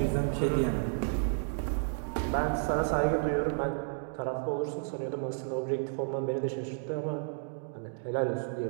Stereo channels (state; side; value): silent; left; digital silence